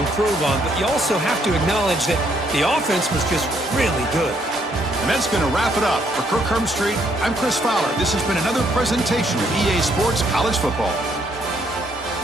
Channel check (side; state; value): both; normal; correlation 0.70